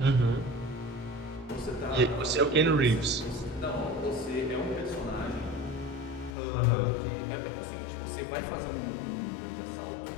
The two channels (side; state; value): right; drops out; at 6.3 s